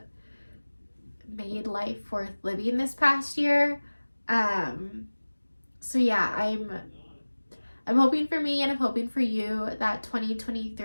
made life worth living this past year. So yeah, I'm hoping for me, and I'm hoping for you that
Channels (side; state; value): both; inverted; correlation -1.00